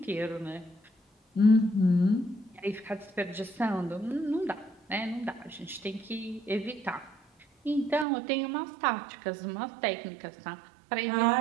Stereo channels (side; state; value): left; drops out; at 8.1 s